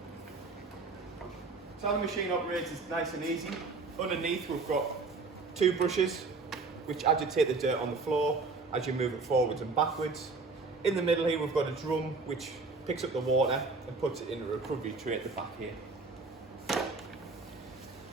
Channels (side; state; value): left; quieter; 4.0 dB